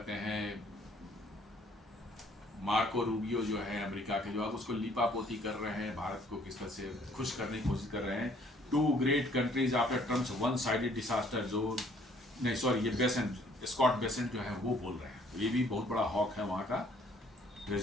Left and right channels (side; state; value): both; normal; correlation 0.61